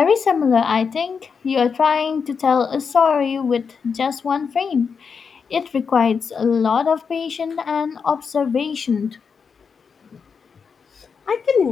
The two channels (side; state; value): right; quieter; 5.9 dB